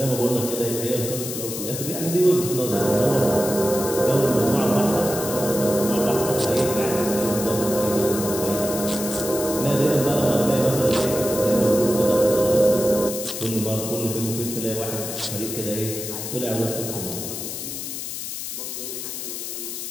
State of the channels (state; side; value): noise; left; hiss, 6 dB below the sound